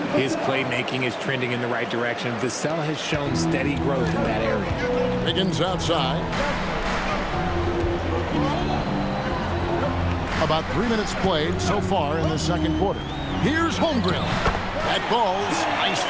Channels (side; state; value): both; identical; correlation 1.00